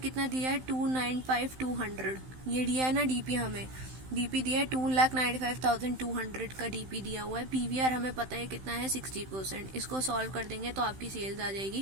कितना दिया है 295,200, ये दिया है ना DP हमें, DP दिया है 2,95,200 का DP दिया हुआ है। PVR हमें पता है कितना है 60%, इसको सॉल्व कर देंगे तो आपकी सेल्स आ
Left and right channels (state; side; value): late; left; 15 ms